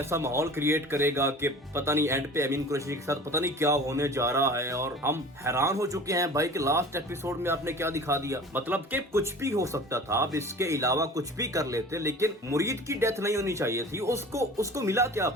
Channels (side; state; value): both; normal; correlation 0.41